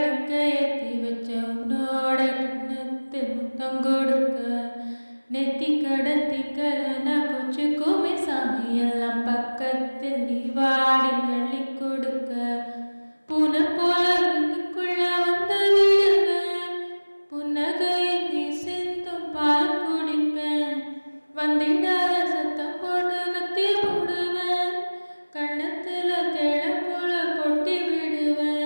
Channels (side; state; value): both; inverted; correlation -1.00